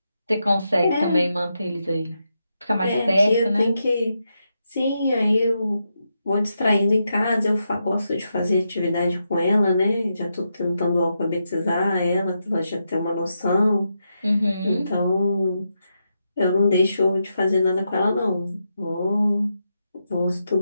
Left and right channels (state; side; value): inverted; both; correlation -0.85